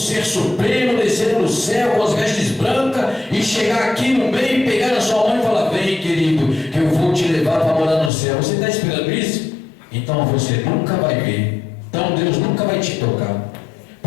supremo, descer do céu com as vestes brancas e chegar aqui no meio, pegar na sua mão e falar: vem, querido, que eu vou te levar para morar no céu. Você está esperando isso? Então você nunca vai ver. Então Deus nunca vai te tocar.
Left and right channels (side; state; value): right; drops out; at 8.1 s